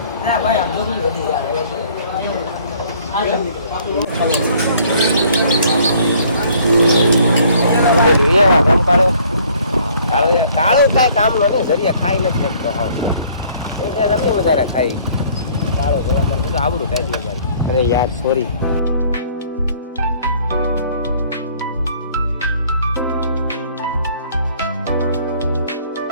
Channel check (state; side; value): inverted; both; correlation -0.58